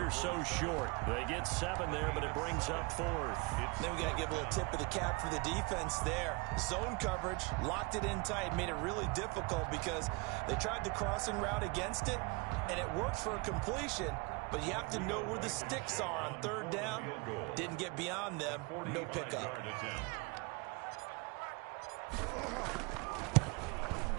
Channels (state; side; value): quieter; left; 28.0 dB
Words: so short. They get 7 there, but it brings up 4th. Then we got to give a little tip of the cap for the defense there. Zone coverage, locked it in tight, made it really difficult because they tried the crossing route against it, and it worked for a completion, but you have to know where the sticks are on 3rd down. Didn't get beyond them, no pickup.